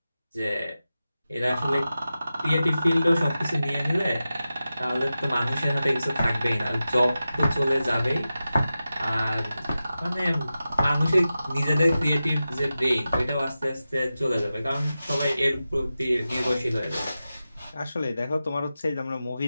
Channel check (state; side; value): inverted; both; correlation -0.93